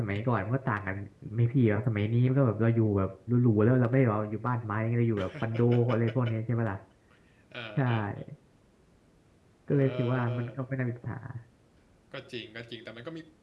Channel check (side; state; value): both; identical; correlation 1.00